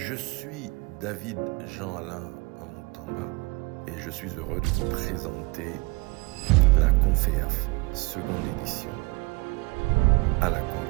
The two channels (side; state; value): left; quieter; 25.8 dB